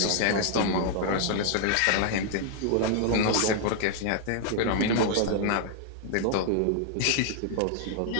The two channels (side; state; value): both; different; correlation 0.00